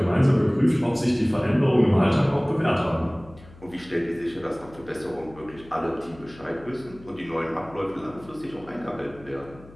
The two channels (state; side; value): noise; left; hum, 21 dB below the sound